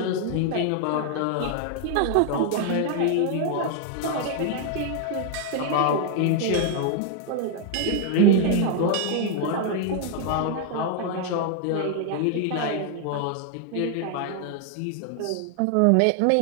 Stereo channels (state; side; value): different; both; correlation 0.00